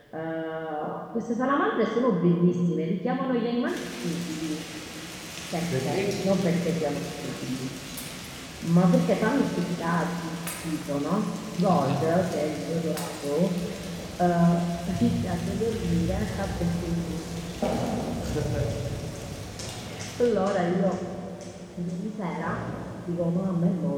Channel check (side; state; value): both; identical; correlation 1.00